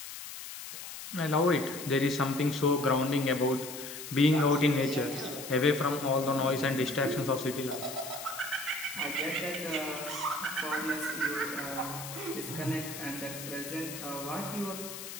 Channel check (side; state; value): left; noise; hiss, 10 dB below the sound